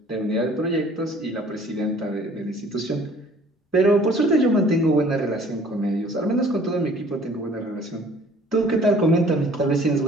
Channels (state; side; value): normal; both; correlation 0.53